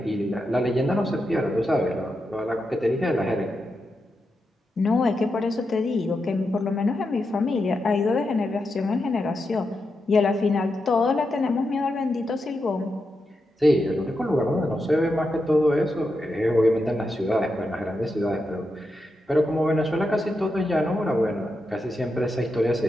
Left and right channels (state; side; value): normal; both; correlation 0.86